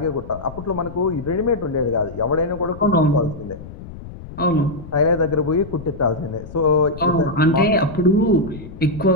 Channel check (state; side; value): noise; left; rumble, 14 dB below the sound